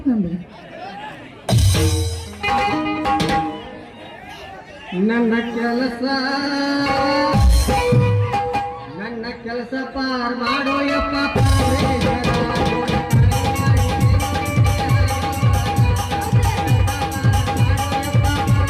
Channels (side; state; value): both; identical; correlation 1.00